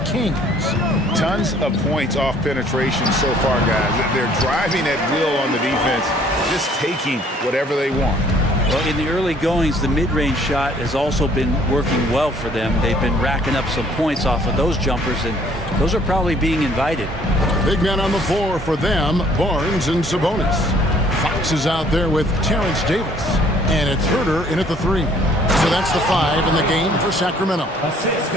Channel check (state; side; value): normal; both; correlation 0.59